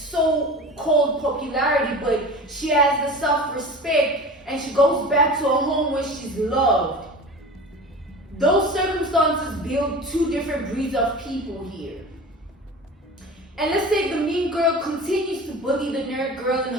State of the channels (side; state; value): both; normal; correlation 0.35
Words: popularity, but she has the self-respect, and she goes back to a home where she's loved. Those circumstances build two different breeds of people here. And let's say the mean girl continues to bully the nerd girl and